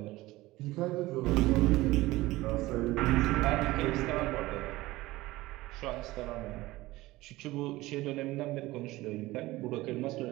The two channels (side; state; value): left; quieter; 18.7 dB